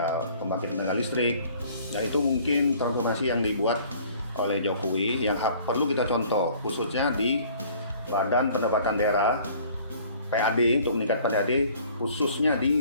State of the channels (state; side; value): inverted; both; correlation -0.53